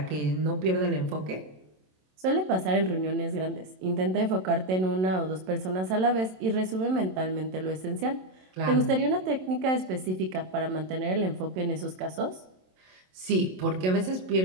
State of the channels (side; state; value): left; late; 27 ms